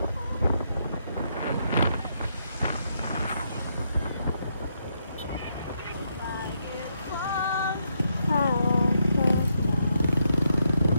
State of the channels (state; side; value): inverted; both; correlation -0.79